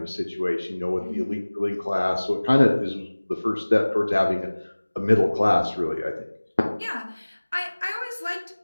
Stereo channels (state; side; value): inverted; both; correlation -1.00